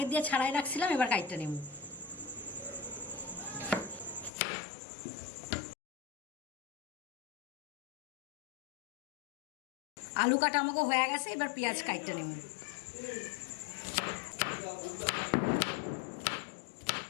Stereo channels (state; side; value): drops out; right; at 4.3 s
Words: দিয়ে ছাড়াই রাখছিলাম, এবার কাইটটা নেব। আলু কাটা আমাকে হয়ে গেছে, এবার পেঁয়াজ কাইটটা নেব।